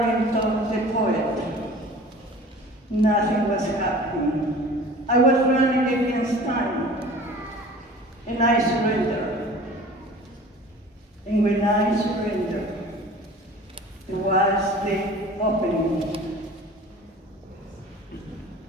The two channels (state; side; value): normal; both; correlation 0.43